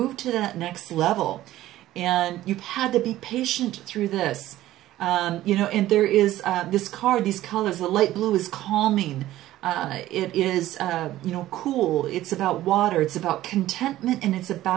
to that next level. And you've had to be patient through this. You know, and there is this card, these colors, the light blue is calming. It is, you know, cool. It's about water. It's about contentment, and it's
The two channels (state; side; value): quieter; left; 14.8 dB